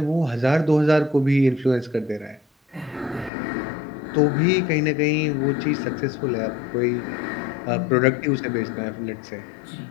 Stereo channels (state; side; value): drops out; right; at 3.3 s